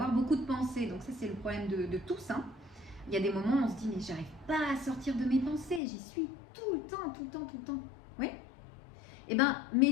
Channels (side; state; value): right; drops out; at 5.8 s